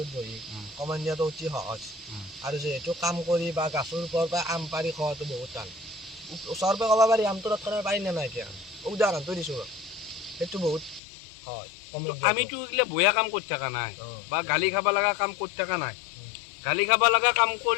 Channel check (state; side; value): drops out; right; at 11.0 s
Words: বহি কমেণ্ট দিয়াটো অতি সহজ আৰু যিহেতু কাম কৰি বা গাছৰ ওপৰৰ পৰা আম পাৰি খোৱাটো বহুত টান ওচৰৰ পৰা ক'ব পাৰি আমটো তৎক্ষণাত পাৰি নে নাই এতিয়া উদাহৰণটো দিছোঁ সেইটো বহুত হয় আমিতো এইগিলা বেয়া কাম কৰি থকা নাই বা গালি খাব লগা কাম কৰি থকা নাই গালি খাব লগা কাম